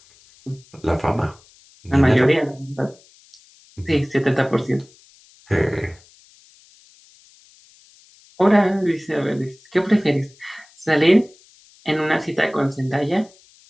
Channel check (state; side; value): noise; left; hiss, 28 dB below the sound